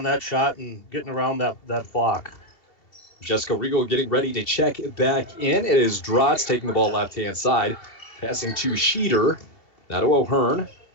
that shot and getting around that block. Jessica Riegel getting ready to check back in. It is Drotz taking the ball left-hand side, passing to Sheeter, now to O'Hearn.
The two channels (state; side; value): late; right; 2.8 ms